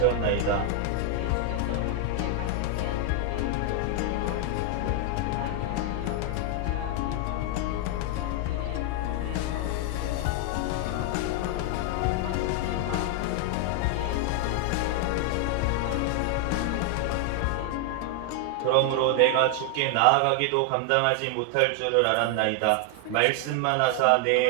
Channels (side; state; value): both; different; correlation 0.00